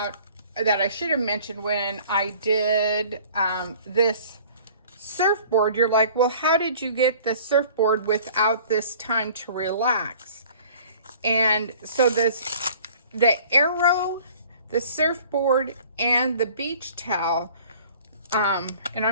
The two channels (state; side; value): inverted; both; correlation -0.50